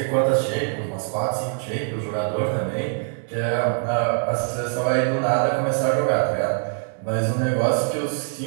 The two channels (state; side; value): silent; left; 58 dB below the other